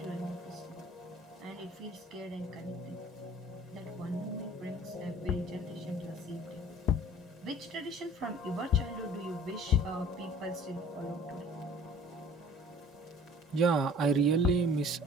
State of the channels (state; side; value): normal; both; correlation 0.49